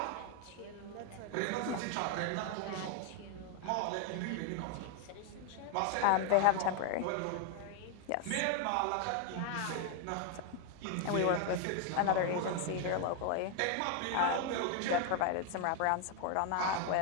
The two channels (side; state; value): both; different; correlation 0.01